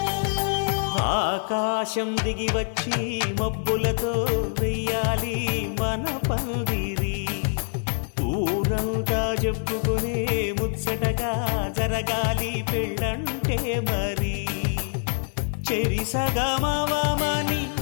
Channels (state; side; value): silent; right; digital silence